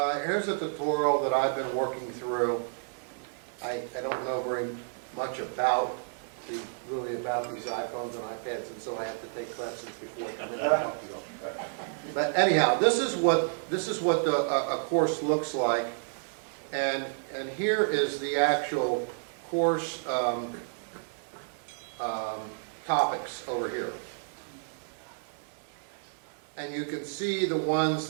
here's a tutorial that I've been working through. I don't know very much about these iPhones and iPads, and so I have to take classes before I come in and talk to you. But anyhow, this is what a course looks like, and here is the actual course topics over here. And you can see the ones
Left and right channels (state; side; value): silent; left; 56 dB below the other